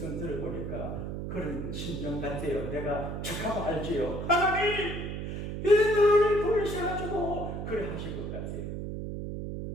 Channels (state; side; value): noise; right; hum, 5 dB below the sound